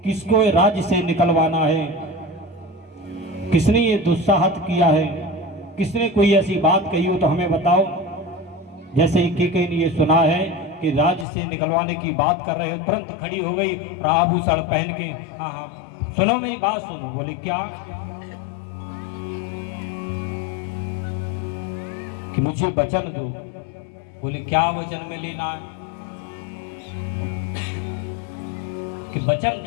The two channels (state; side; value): drops out; right; at 11.2 s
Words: किसको राज्य से निकलवाना है, किसने ये दुस्साहत किया है, किसने कोई ऐसी बात कही हो तो हमें बताओ। जैसे ही केकई ने ये सुना है कि राज्य से निकलवाने की बात कर रहे हो, तुरंत खड़ी हो गई आभूषण पहन के। हाँ हाँ सुनो, मेरी बात सुनो। बोले क्या? कि मुझे वचन दो। बोले क्या वचन में लेना है? कि वचन